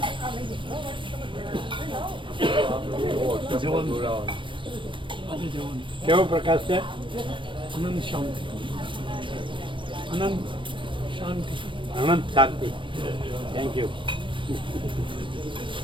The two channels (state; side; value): late; left; 0.24 ms